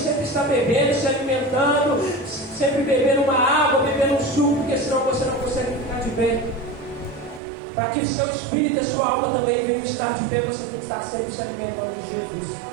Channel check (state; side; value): drops out; left; at 7.4 s